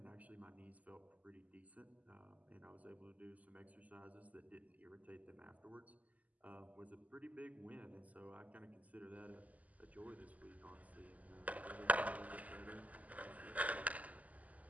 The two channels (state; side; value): late; left; 0.075 ms